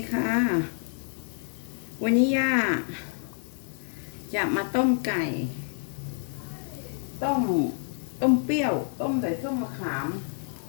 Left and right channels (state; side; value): silent; right; digital silence